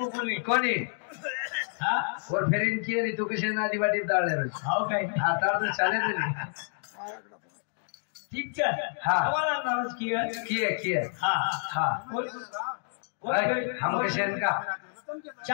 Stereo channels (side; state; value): right; silent; digital silence